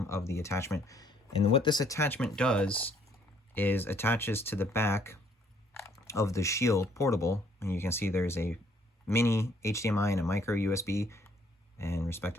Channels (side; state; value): both; normal; correlation 0.64